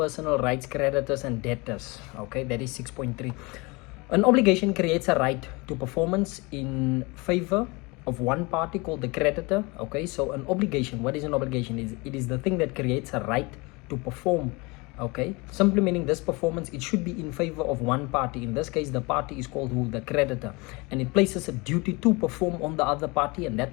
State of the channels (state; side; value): quieter; right; 26.2 dB